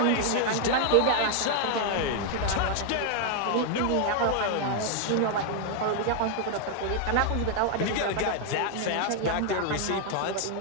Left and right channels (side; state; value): both; different; correlation 0.00